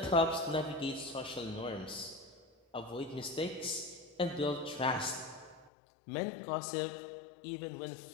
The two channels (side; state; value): right; drops out; at 5.7 s